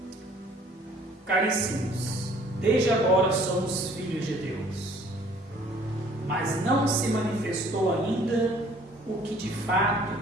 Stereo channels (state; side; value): normal; both; correlation 0.56